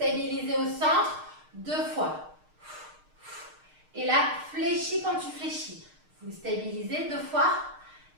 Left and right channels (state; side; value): late; left; 6.5 ms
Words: au centre 2 fois. Et là, fléchis quand tu fléchis. Vous stabilisez 2 fois